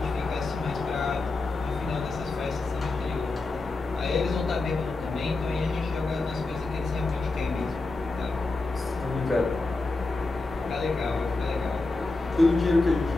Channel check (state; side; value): quieter; right; 3.4 dB